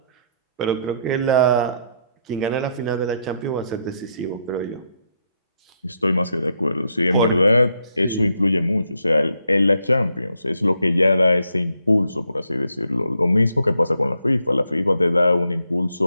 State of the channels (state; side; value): inverted; both; correlation -0.76